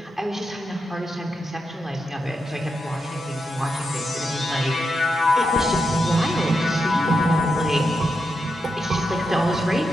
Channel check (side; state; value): both; normal; correlation 0.85